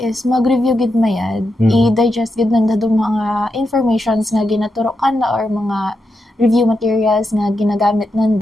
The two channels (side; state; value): both; normal; correlation 0.86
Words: mag-review gid mayad, i-digest gid nanda do mga informations nga ginaturo kana or mga review materials nga ginagamit